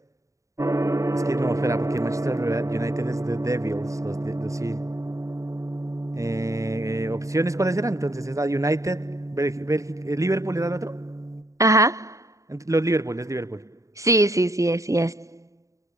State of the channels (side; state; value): left; late; 0.16 ms